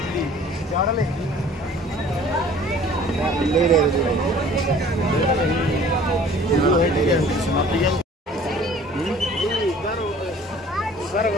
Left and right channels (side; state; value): both; normal; correlation 0.50